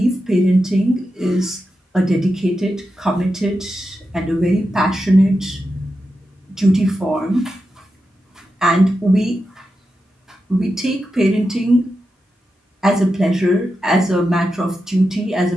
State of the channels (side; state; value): both; normal; correlation 0.89